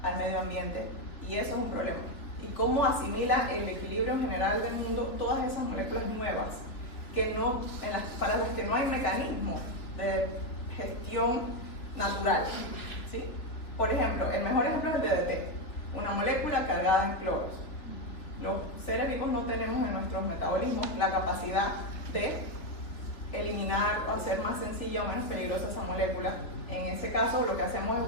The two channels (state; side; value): late; right; 3.4 ms